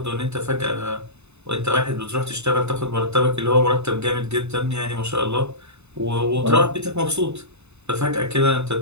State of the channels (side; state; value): left; late; 0.81 ms